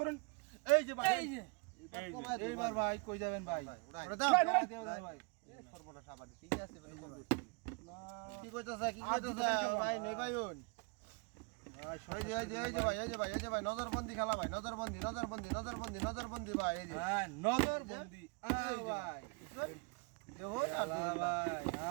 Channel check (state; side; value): quieter; left; 32.1 dB